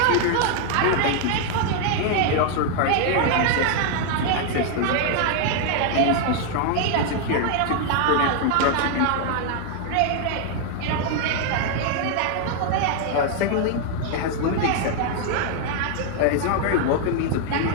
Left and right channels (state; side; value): different; both; correlation 0.00